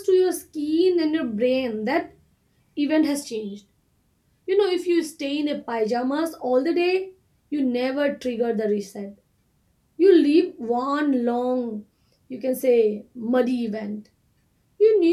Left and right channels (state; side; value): identical; both; correlation 1.00